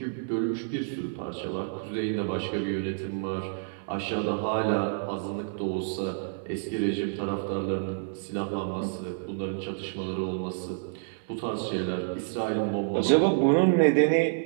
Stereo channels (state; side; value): silent; left; 59 dB below the other